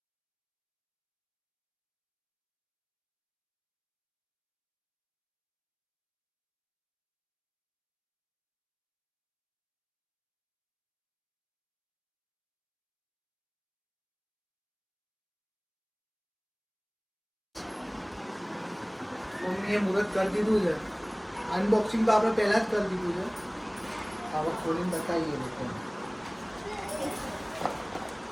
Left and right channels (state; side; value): identical; both; correlation 1.00